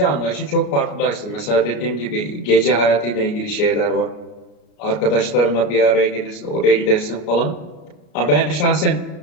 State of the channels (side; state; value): right; late; 33 ms